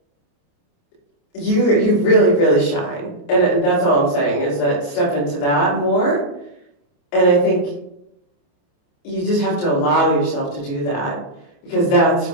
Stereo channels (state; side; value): late; right; 28 ms